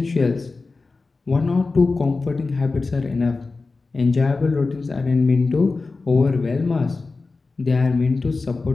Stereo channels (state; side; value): quieter; right; 3.8 dB